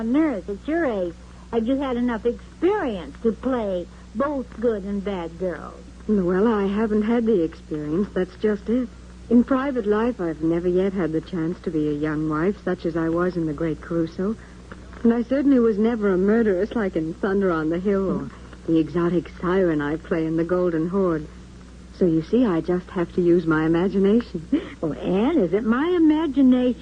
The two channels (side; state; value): both; identical; correlation 1.00